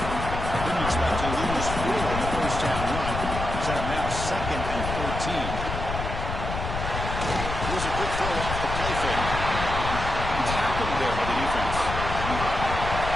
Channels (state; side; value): noise; left; rumble, 5 dB below the sound